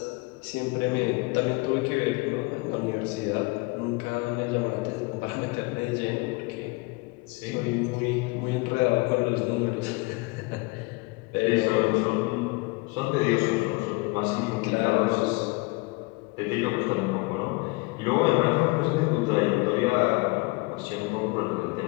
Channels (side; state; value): right; quieter; 25.7 dB